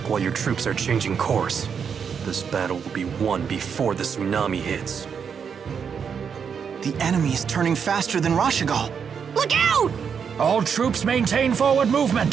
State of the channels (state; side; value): quieter; left; 6.8 dB